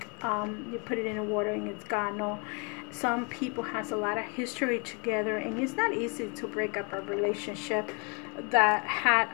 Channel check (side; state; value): right; quieter; 34.6 dB